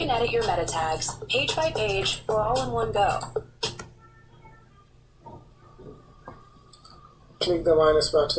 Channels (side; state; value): both; identical; correlation 1.00